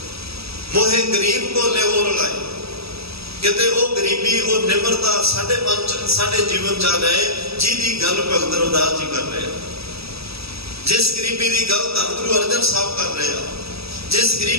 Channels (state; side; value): late; left; 0.77 ms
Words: ਮੋਹੇ ਗਰੀਬ ਕੋ ਲਿਹੋ ਰਲਾਏ, ਕਿਤੇ ਉਹ ਗਰੀਬੀ, ਉਹ ਨਿਮਰਤਾ ਸਾਡੇ ਮਨ ਚ, ਸਾਡੇ ਜੀਵਨ ਚ ਆ ਜਾਏ, ਜਿਹਦੀ ਗੱਲ ਭਗਤ ਰਵਿਦਾਸ ਜੀ ਕਰ ਰਹੇ ਆ। ਜਿਸ ਗਰੀਬੀ ਦੀ ਗੱਲ ਧੰਨ ਗੁਰੂ ਅਰਜਨ ਸਾਹਿਬ ਕਰ ਰਹੇ ਆ, ਜਿਸ